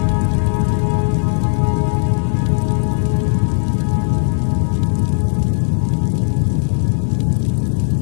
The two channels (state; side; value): silent; right; digital silence